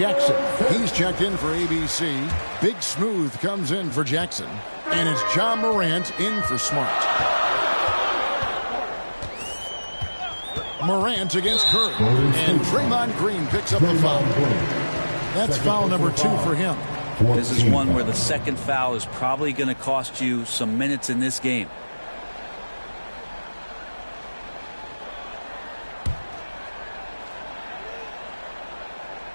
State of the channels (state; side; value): inverted; both; correlation -1.00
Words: he's checked in for ABC. Big Smooth comes in for Jackson. And it's John Morant in for Smart. Morant against Curry. And Draymond Green picks up the foul. That's foul number 2 for him. This is one where the second foul is probably going to cost you some minutes in this game.